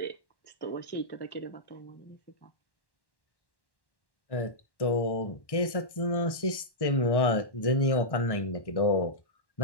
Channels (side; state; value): right; late; 1.1 ms